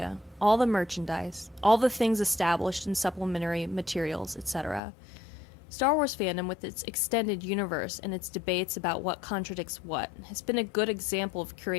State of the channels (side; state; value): right; drops out; at 4.8 s